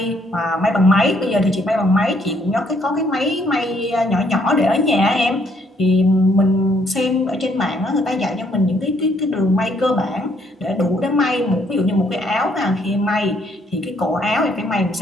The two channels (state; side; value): normal; both; correlation 0.68